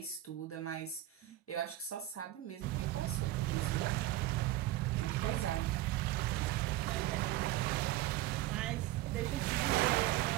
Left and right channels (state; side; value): quieter; left; 15.4 dB